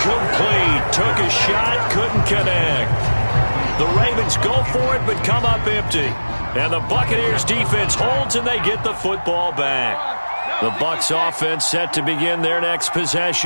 Took a shot, couldn't connect. The Ravens go for it, but come up empty. And the Buccaneers defense holds, and they get the football back. The Bucs offense set to begin their next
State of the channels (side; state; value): both; inverted; correlation -1.00